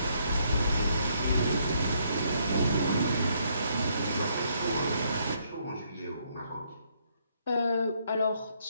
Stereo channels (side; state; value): both; inverted; correlation -0.71